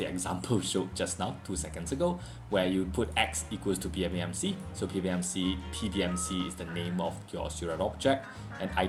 example showed just now 2 seconds ago, where you put x equals to PBMC. So PBMC is the name of your Seurat object, and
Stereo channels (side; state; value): both; identical; correlation 1.00